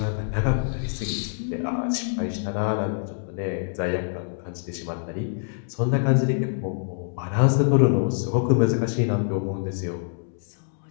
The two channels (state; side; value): silent; right; digital silence